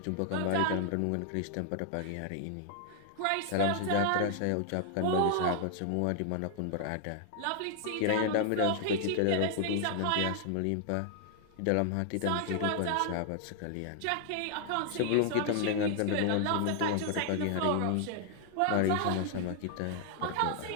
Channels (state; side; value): different; both; correlation 0.00